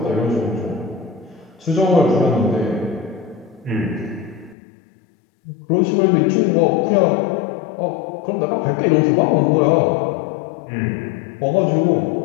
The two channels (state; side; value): drops out; right; at 4.5 s